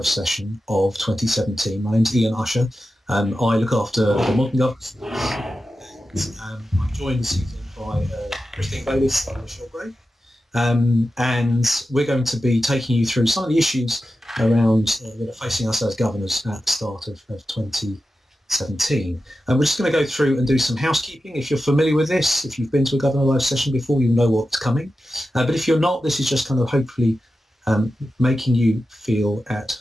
session of 2017. My name's Ian Usher. I look after the modern governors. I'm joined this evening by Christine Bayliss of Michelle Gray. And we're going to be taking you through some of the issues around that are facing us as governors at the start of 2017. And we're just going to go through and do some housekeeping. If you're familiar with this, if you've been to a Governor Live session before, you'll know what's coming. But if you're not, this is just kind of hopefully making you feel at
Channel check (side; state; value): both; normal; correlation 0.92